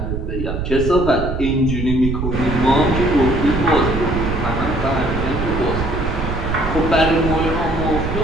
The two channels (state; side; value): noise; right; rumble, 4 dB below the sound